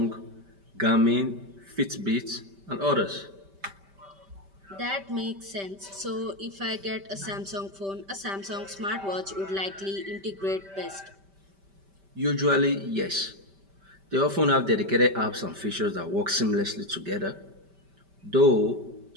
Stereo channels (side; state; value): left; late; 5.1 ms